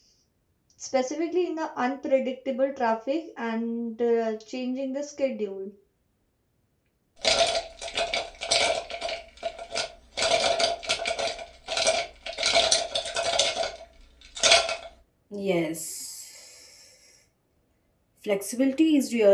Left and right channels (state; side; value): identical; both; correlation 1.00